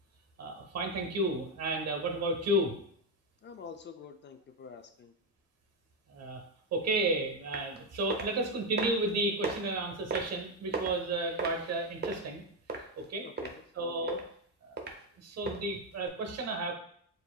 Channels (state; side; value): normal; both; correlation 0.06